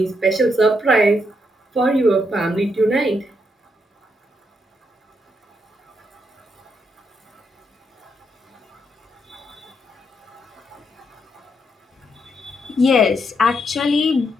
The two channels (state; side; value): normal; both; correlation 0.78